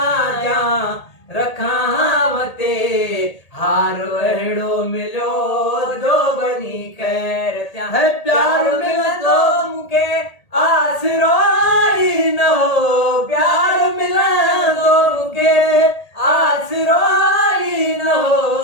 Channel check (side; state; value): right; late; 1.8 ms